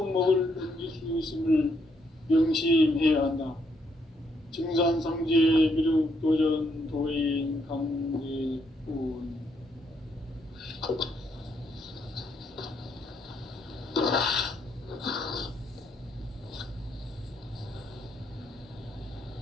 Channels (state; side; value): normal; both; correlation 0.74